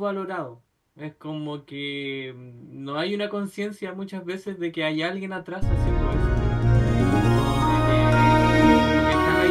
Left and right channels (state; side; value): identical; both; correlation 1.00